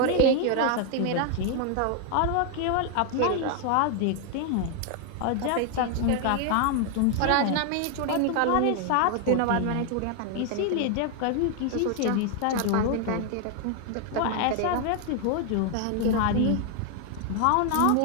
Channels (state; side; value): different; both; correlation 0.00